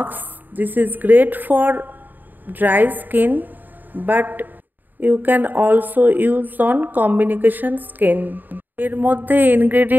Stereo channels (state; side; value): late; left; 0.089 ms